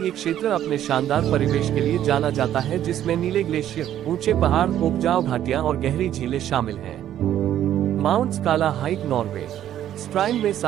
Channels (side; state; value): left; quieter; 11.4 dB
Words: क्षेत्र अपने शानदार परिवेश के लिए जाना जाता है, जिसमें नीले ग्लेशियर, ऊंचे पहाड़, उपजाऊ घाटियां और गहरी झीलें शामिल हैं। Mount Skala hike Norway. Stryn में